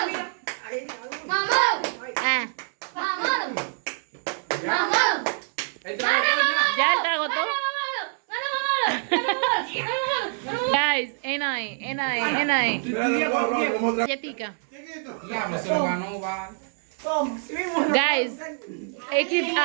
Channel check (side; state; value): left; silent; 61 dB below the other